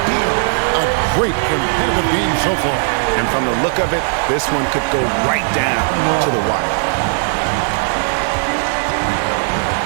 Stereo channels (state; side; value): silent; left; 65 dB below the other